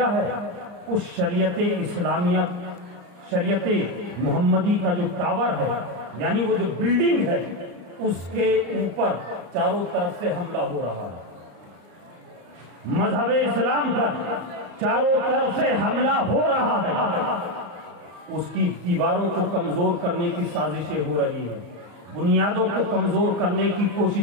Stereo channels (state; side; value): late; left; 34 ms